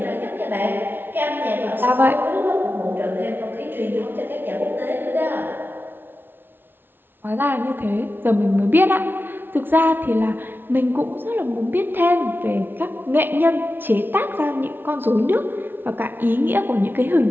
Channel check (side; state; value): left; late; 0.10 ms